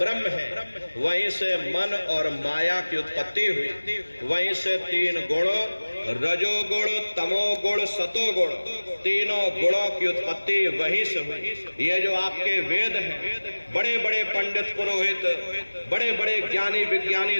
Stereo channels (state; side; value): inverted; both; correlation -1.00